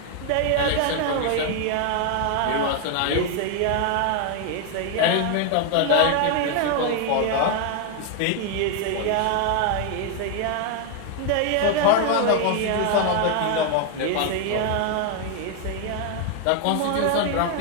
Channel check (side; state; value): both; different; correlation 0.00